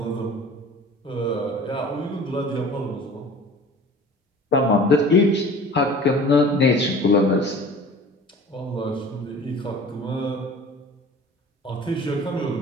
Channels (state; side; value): normal; both; correlation 0.43